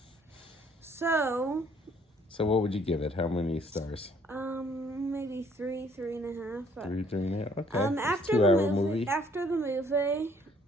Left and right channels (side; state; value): both; normal; correlation 0.62